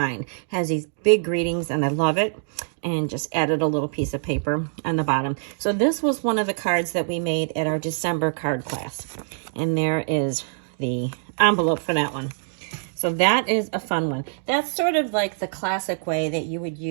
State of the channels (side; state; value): left; silent; digital silence